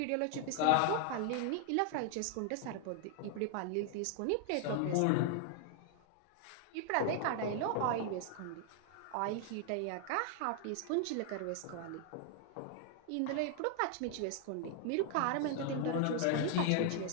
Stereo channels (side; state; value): both; different; correlation 0.00